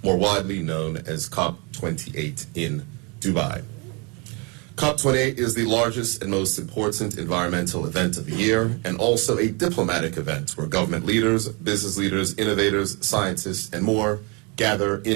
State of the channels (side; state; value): left; quieter; 31.1 dB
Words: widely known as COP28 in Dubai. COP28 is the largest and most important environmental event of the year and also a diplomatic event where government leaders, business leaders, innovators, scientists, and more gather